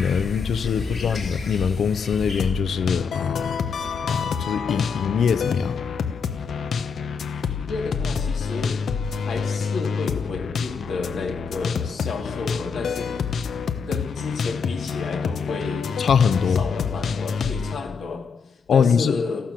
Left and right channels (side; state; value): right; quieter; 5.7 dB